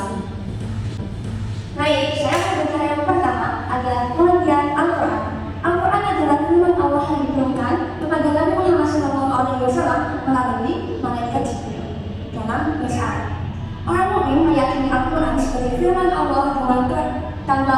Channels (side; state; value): both; identical; correlation 1.00